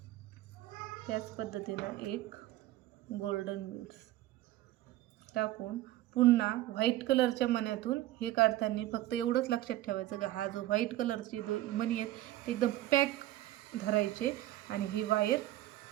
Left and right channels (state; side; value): quieter; left; 15.2 dB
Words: त्याच पद्धतीनं एक गोल्डन बीड्स टाकून पुन्हा व्हाईट कलरच्या मण्यातून हे काढताना फक्त एवढंच लक्षात ठेवायचं का हा जो व्हाईट कलरचे मणी आहेत ते एकदम पॅक धरायचे आणि ही वायर